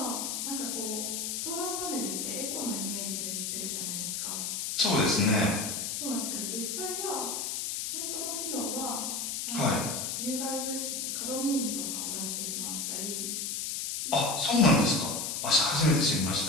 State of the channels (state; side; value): noise; left; hiss, 2 dB below the sound